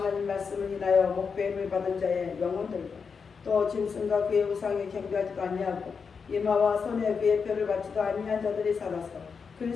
말씀을 인하여 목배임을 받은 자의 영혼들과 또 짐승과 그의 우상에 경배하지도 아니하고 이마와 손에 그의 표를 받지도 아니한 자들이 살아서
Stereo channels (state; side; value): quieter; right; 5.7 dB